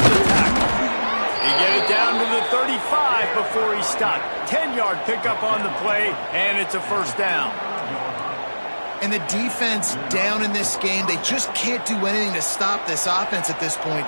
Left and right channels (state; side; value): inverted; both; correlation -1.00